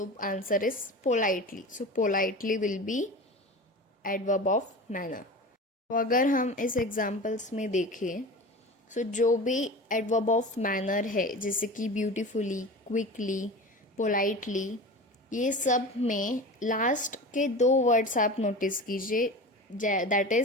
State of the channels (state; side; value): normal; both; correlation 0.32